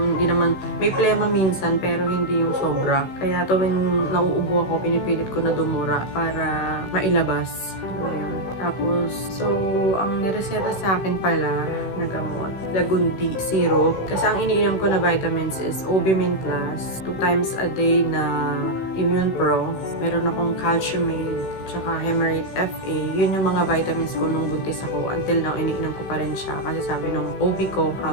hindi naman, may plema minsan, pero hindi yung sobra. Kaya tuwing nauubo ako, pinipilit ko na dumura para mailabas. Ayun. Tapos, so, ang nireseta sa akin pala na gamot, Lagundi syrup. Kasi ang iniinom ko na vitamins is Obimin Plus, 2 times a day na Immune Pro. Meron akong Calciumate, tsaka Hemerate FA. Yun yung mga vitamins ko nung buntis ako. Until now, iniinom ko pa rin siya. Kasi sabi nung OB ko,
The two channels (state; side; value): late; right; 16 ms